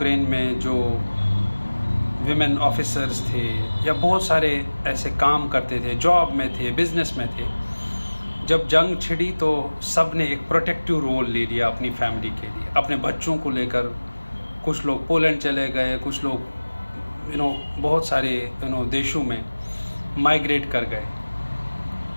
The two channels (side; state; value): both; inverted; correlation -1.00